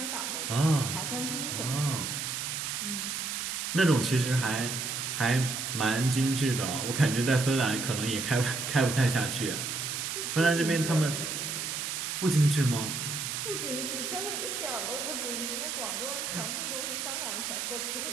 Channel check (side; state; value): right; noise; hiss, 3 dB below the sound